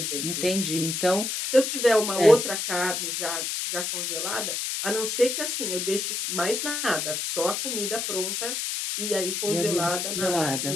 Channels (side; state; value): left; noise; hiss, 2 dB below the sound